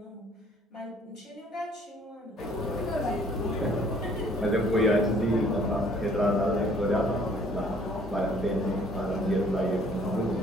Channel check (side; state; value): both; normal; correlation 0.59